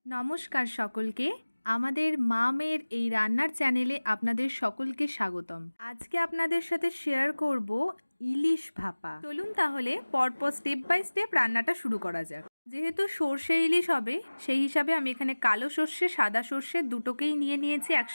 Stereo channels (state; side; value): inverted; both; correlation -1.00